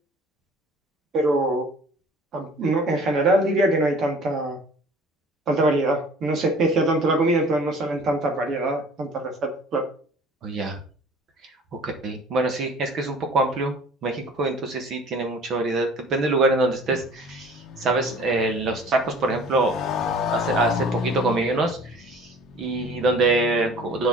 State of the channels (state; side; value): normal; both; correlation 0.48